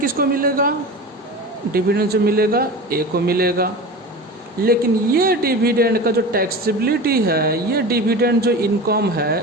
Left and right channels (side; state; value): both; normal; correlation 0.31